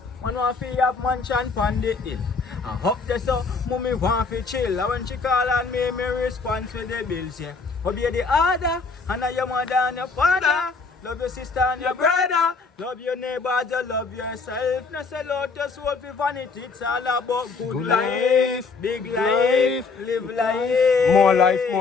Man want to have mansion pon the hill. I hope this so, mommy want to chill. And when she call on me, me respond to the bills, yeah. Obey the order, and I your mother and your father. Love your sister and your brother. Love your neighbors, you love yourself. No sell out your soul for vanity. It's all about good life, big life, live life. More life,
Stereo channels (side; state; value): right; quieter; 4.5 dB